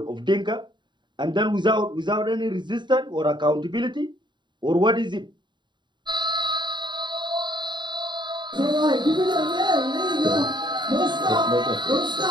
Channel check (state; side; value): late; left; 0.22 ms